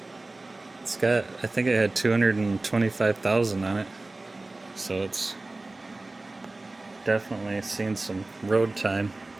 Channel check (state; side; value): quieter; left; 3.0 dB